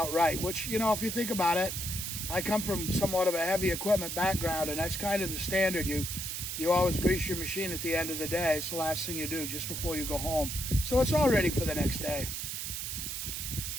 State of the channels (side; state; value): right; noise; hiss, 4 dB below the sound